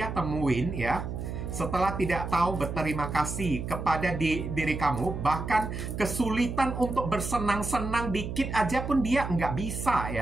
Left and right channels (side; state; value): right; noise; hum, 5 dB below the sound